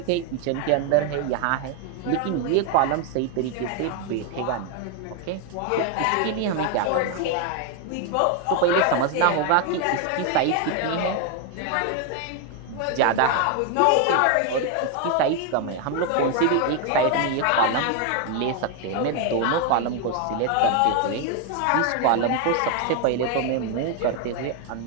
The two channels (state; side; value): different; both; correlation 0.01